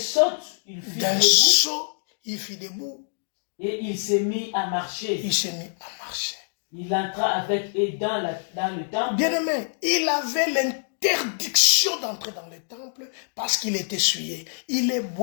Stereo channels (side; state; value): right; silent; digital silence